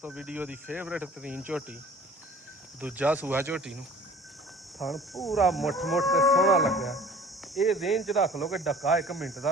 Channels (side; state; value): both; normal; correlation 0.48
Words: ਵੀਡੀਓ ਦੀ ਫੇਵਰੇਟ ਤਰੀਨ ਝੋਟੀ, ਦੂਜਾ ਸੂਆ ਝੋਟੀ ਨੂੰ। ਥਣ ਪੂਰਾ ਮੁੱਠ ਤੇ ਸੋਹਣਾ ਲੱਗਾ। ਇਹ ਰੇਂਜ 'ਚ ਰੱਖ ਲਓ ਕਿ ਡੱਕਾ 1 ਮਿੰਟ